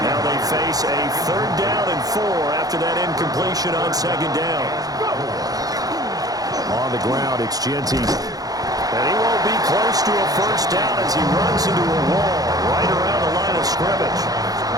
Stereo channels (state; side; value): late; left; 0.18 ms